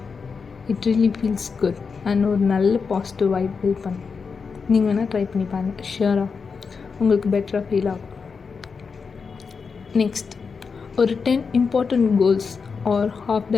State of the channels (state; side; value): quieter; right; 5.3 dB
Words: It really feels good. And ஒரு நல்ல பாசிட்டிவ் வைப் பில்ட் பண்ணும். நீங்கள் வேணால் ட்ரை பண்ணி பாருங்கள். ஷியராக உங்களுக்கு பெட்டராக ஃபீல் ஆகும். நெக்ஸ்ட், ஒரு 10 important goals or half